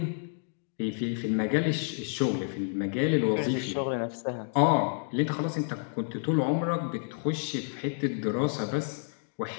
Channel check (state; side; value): silent; right; digital silence